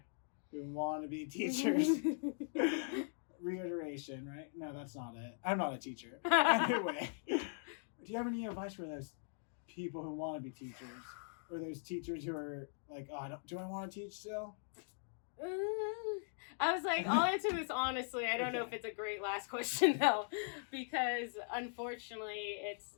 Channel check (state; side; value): silent; right; digital silence